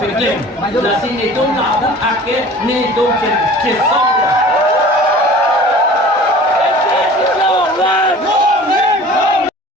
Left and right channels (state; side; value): normal; both; correlation 0.44